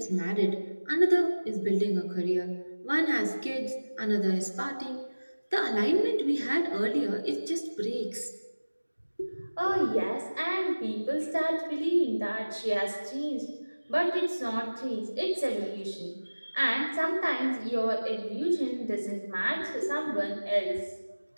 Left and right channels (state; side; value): inverted; both; correlation -1.00